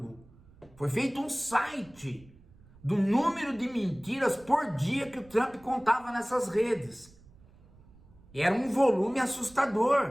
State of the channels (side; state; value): right; noise; rumble, 25 dB below the sound